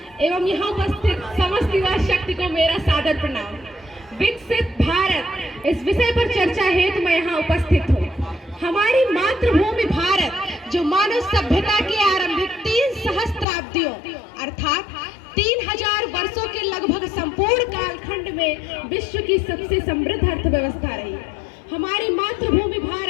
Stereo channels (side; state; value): right; drops out; at 13.5 s